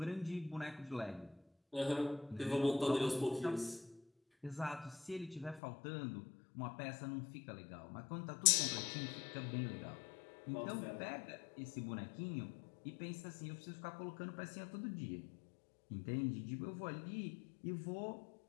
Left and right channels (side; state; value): right; drops out; at 5.6 s